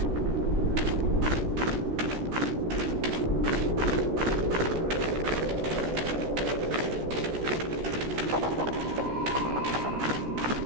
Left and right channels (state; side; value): late; left; 15 ms